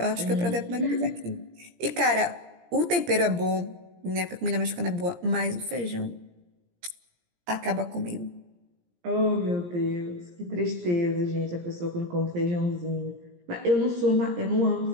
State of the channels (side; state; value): left; late; 17 ms